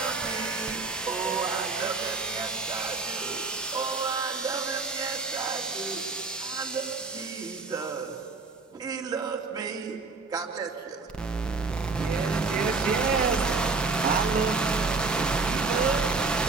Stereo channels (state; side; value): quieter; left; 4.1 dB